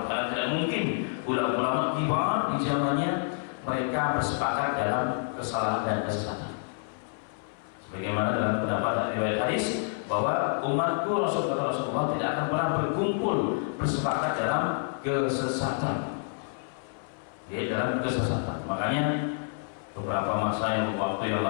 karena tidak mungkin ulama-ulama kibar di zamannya mereka bersepakat dalam kesalahan dan kesesatan. Sebagaimana dalam pendapat riwayat hadis bahwa umatku Rasulullah tidak akan pernah berkumpul bersepakat dalam kesesatan. Dia dalam kesesatan. Makanya beberapa masa yang waktu yang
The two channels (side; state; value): right; silent; 59 dB below the other